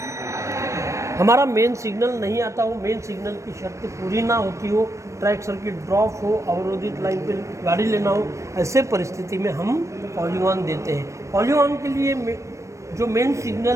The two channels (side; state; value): left; late; 0.15 ms